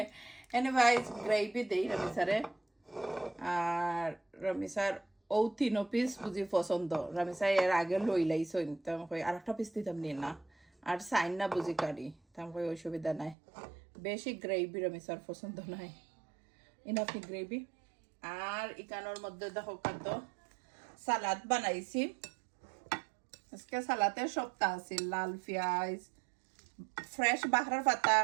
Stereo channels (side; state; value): left; drops out; at 13.4 s